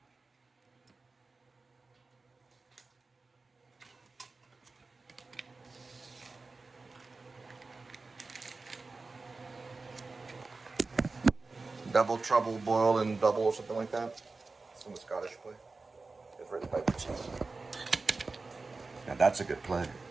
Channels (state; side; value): quieter; left; 3.8 dB